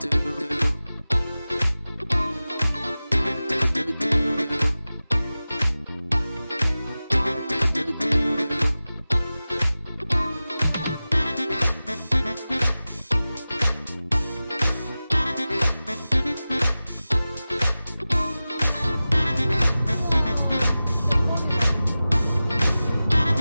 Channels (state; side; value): inverted; both; correlation -0.96